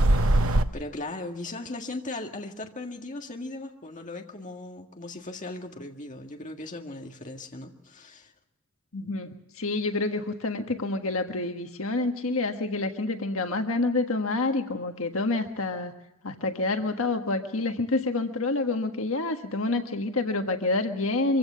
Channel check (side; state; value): both; normal; correlation 0.31